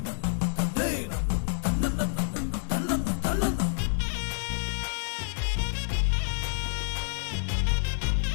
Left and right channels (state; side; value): silent; right; digital silence